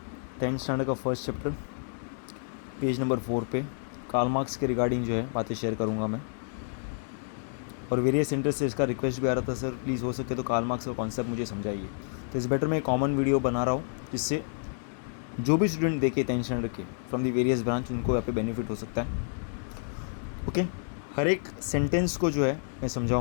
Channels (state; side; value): silent; right; digital silence